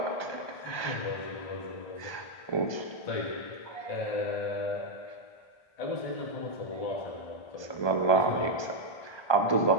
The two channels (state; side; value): late; right; 1.2 ms